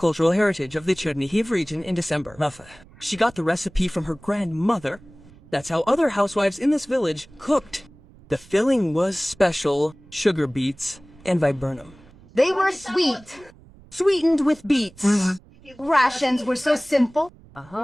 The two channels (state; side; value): noise; right; rumble, 24 dB below the sound